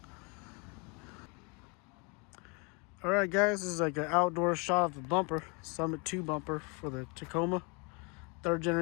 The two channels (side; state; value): right; quieter; 32.1 dB